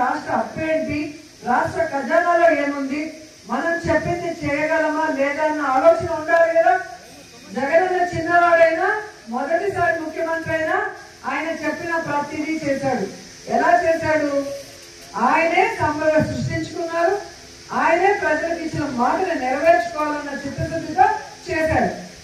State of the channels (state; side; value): identical; both; correlation 1.00